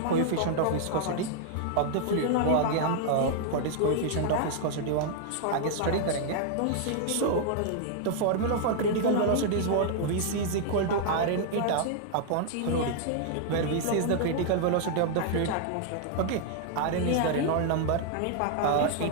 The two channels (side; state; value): both; different; correlation -0.01